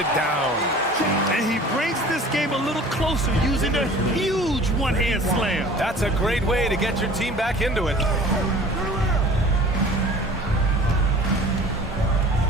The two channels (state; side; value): normal; both; correlation 0.45